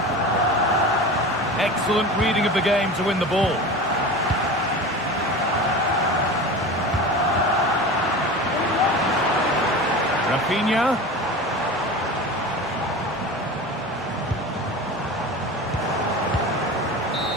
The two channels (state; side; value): normal; both; correlation 0.31